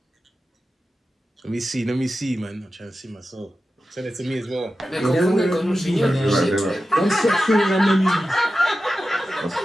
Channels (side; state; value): both; normal; correlation 0.93